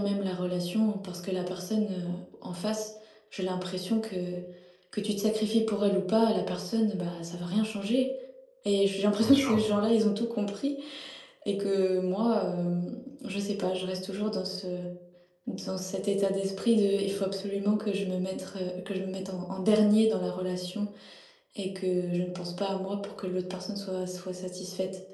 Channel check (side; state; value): both; identical; correlation 1.00